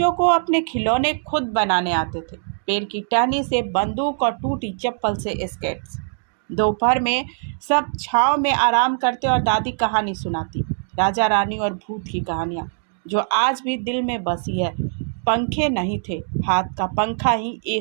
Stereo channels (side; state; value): left; silent; digital silence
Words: को अपने खिलौने खुद बनाने आते थे, पेड़ की टहनी से बंदूक और टूटी चप्पल से स्केट्स। दोपहर में सब छांव में आराम करते और दादी कहानी सुनाती, राजा रानी और भूत की कहानियाँ जो आज भी दिल में बसी है। पंखे नहीं थे, हाथ का पंखा ही